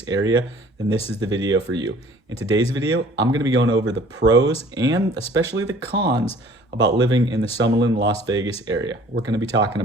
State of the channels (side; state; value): both; normal; correlation 0.52